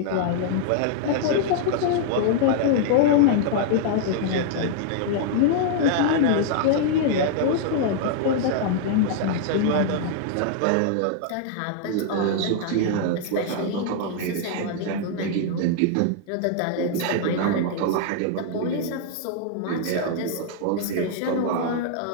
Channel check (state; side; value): different; both; correlation -0.01